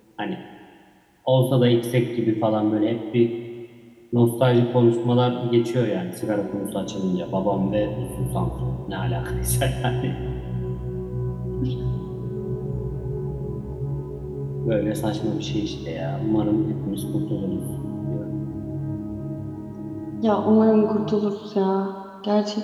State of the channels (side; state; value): both; identical; correlation 1.00